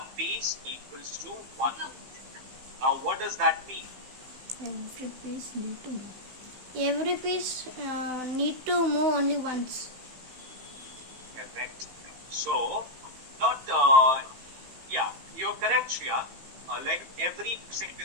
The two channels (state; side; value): late; left; 15 ms